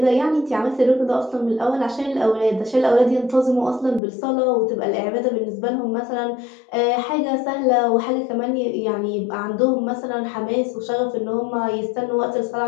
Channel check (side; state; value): right; drops out; at 4.0 s